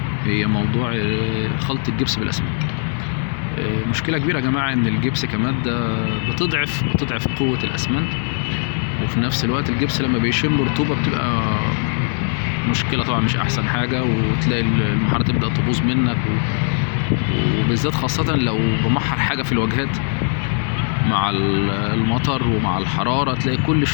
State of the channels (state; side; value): silent; right; 63 dB below the other